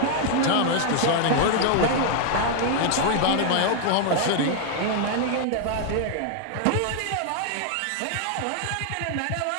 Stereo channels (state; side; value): different; both; correlation 0.00